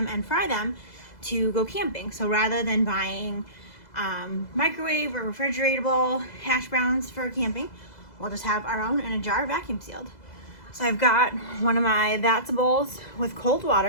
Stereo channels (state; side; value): late; right; 2.0 ms